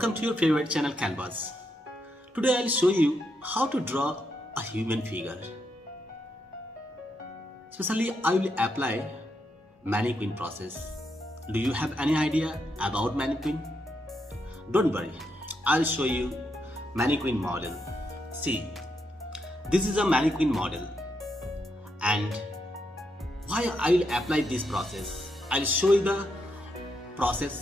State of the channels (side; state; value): both; normal; correlation 0.81